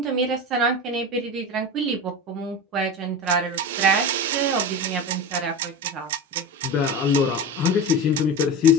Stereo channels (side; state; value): both; normal; correlation 0.27